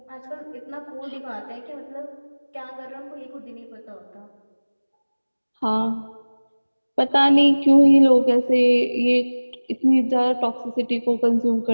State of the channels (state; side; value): inverted; both; correlation -1.00